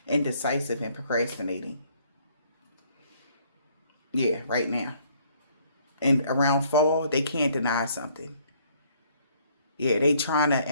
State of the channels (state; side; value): inverted; both; correlation -0.63